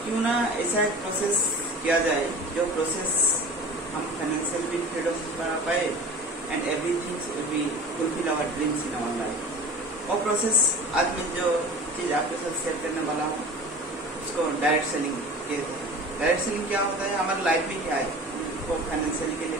ना ऐसा एक प्रोसेस किया जाए जो प्रोसेस हम फाइनेंशियल भी फ्रीडम बना पाए and everything will be fulfil our dreams in our life. और प्रोसेस आज मैं जो चीज आपके साथ शेयर करने वाला हूँ उसको डायरेक्ट सेलिंग कहते हैं। डायरेक्ट सेलिंग क्या होता है? हमारी लाइफ में क्या है, हमको फाइनेंशियली के लिए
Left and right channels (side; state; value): both; normal; correlation 0.38